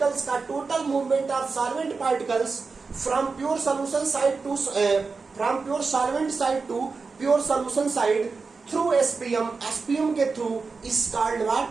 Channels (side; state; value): left; quieter; 4.5 dB